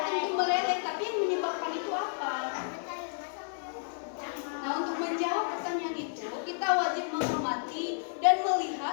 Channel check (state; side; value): silent; right; digital silence